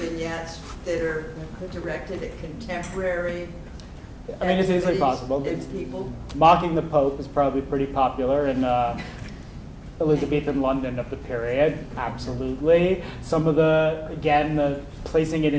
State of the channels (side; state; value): both; identical; correlation 1.00